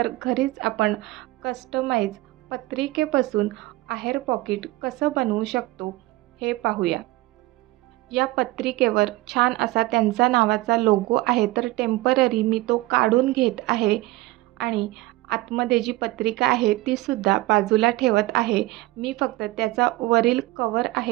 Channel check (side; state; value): left; quieter; 19.5 dB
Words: घरीच आपण कस्टमाइज पत्रिकेपासून आहेर पॉकेट कसं बनवू शकतो हे पाहूया. या पत्रिकेवर छान असा त्यांचा नावाचा लोगो आहे, तर टेम्पररी मी तो काढून घेत आहे आणि आतमध्ये जी पत्रिका आहे ती सुद्धा बाजूला ठेवत आहे. मी फक्त त्याचा वरील कवर